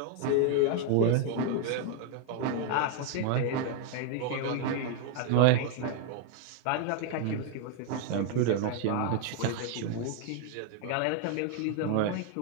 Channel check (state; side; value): different; both; correlation 0.01